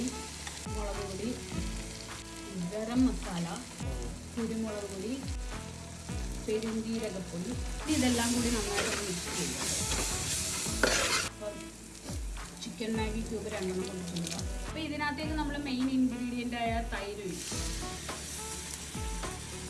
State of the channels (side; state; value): both; identical; correlation 1.00